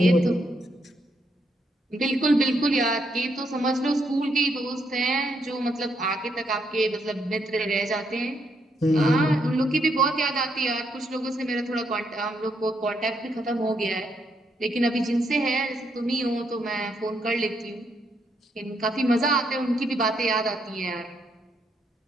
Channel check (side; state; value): both; normal; correlation 0.76